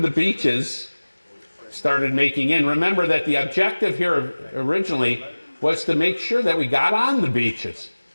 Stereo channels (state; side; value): inverted; both; correlation -1.00